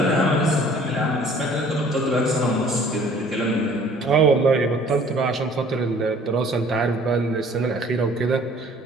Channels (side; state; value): both; normal; correlation 0.53